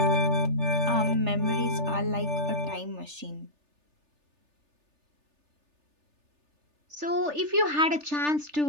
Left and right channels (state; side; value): late; left; 3.4 ms